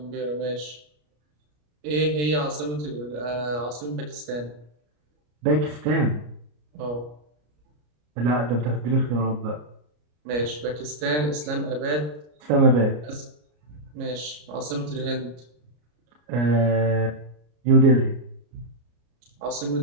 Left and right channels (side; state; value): left; late; 33 ms